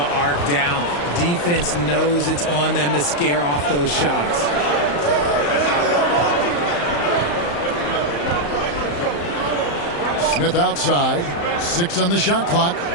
arc down. Defense knows it's on them to scare off those shots. Smith outside. 6 on the shot clock.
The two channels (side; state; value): right; late; 35 ms